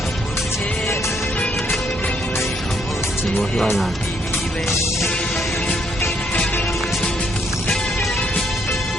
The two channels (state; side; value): normal; both; correlation 0.71